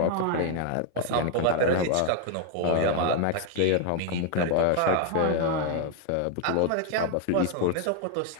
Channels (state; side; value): different; both; correlation 0.00